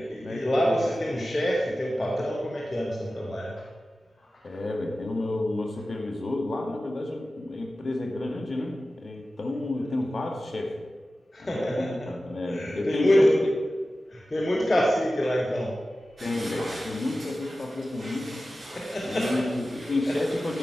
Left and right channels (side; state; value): both; normal; correlation 0.95